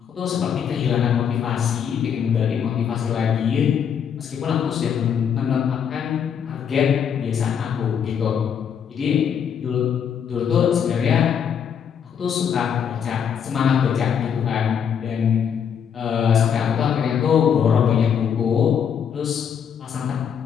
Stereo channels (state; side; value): quieter; right; 7.9 dB